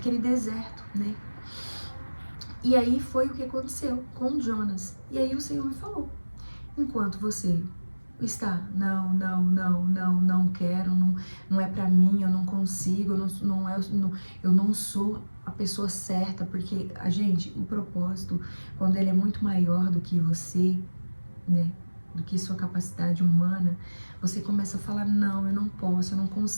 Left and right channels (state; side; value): inverted; both; correlation -1.00